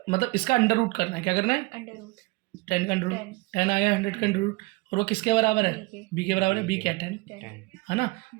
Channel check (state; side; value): quieter; left; 23.6 dB